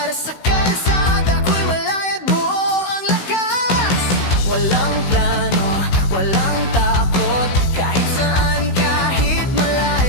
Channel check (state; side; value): late; right; 16 ms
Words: sa kalsada ko'y malayat buo ang lakas. Walang plano, walang takot, kahit saan, kahit